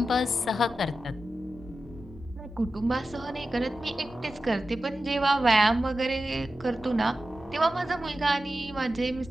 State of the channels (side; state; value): both; normal; correlation 0.92